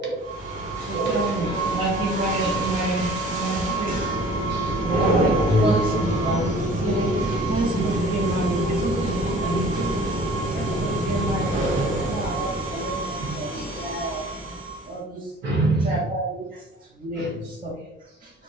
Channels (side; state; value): both; normal; correlation 0.48